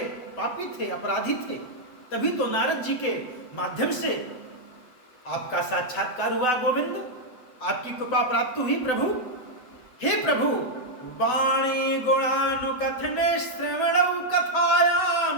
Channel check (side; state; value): right; late; 7.9 ms